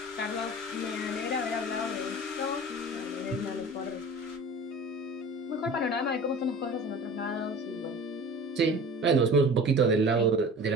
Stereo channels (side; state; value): both; normal; correlation 0.40